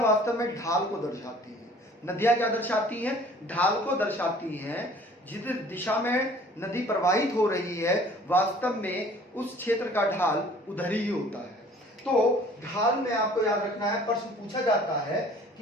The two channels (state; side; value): normal; both; correlation 0.52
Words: वास्तव में ढाल को दर्शाती हैं। नदियां क्या दर्शाती हैं, ढाल को दर्शाती हैं। जिस दिशा में नदी प्रवाहित हो रही है वास्तव में उस क्षेत्र का ढाल उधर ही होता है। तो ढाल में आपको याद रखना है, प्रश्न पूछा जाता है